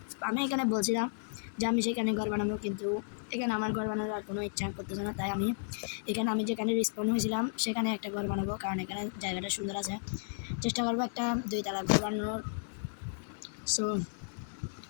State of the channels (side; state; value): right; silent; digital silence